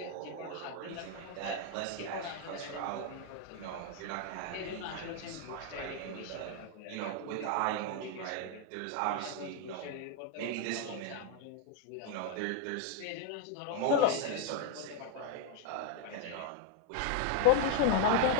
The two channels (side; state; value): both; different; correlation 0.00